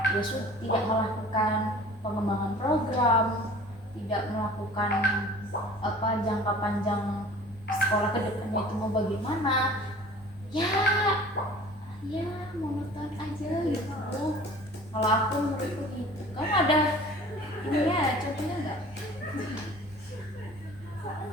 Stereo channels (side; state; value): both; normal; correlation 0.46